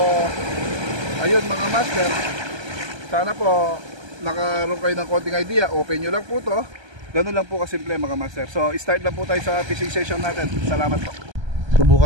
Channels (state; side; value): late; left; 1.3 ms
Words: ayun mga master, sana po nakaroon kayo ng konting idea. Open nyo lang po to. Ganun lang po kasimple mga master. So start na po tayo sa fishing session natin. Salamat po.